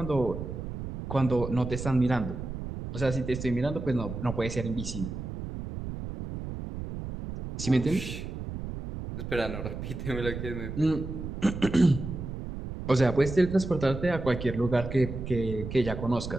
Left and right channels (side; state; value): right; noise; rumble, 7 dB below the sound